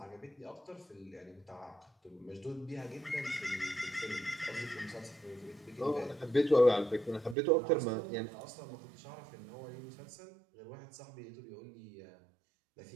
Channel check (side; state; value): left; drops out; at 7.4 s